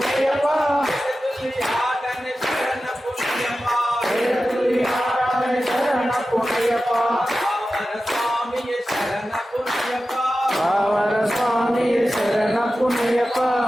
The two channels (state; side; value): normal; both; correlation 0.93